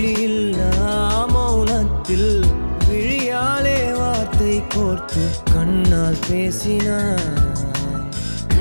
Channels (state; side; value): inverted; both; correlation -1.00